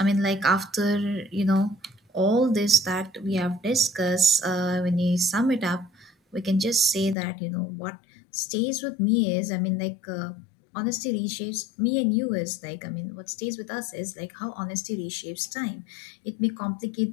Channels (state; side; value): drops out; right; at 7.2 s